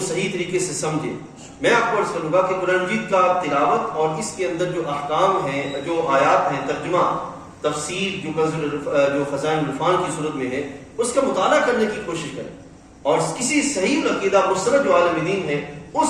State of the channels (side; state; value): both; identical; correlation 1.00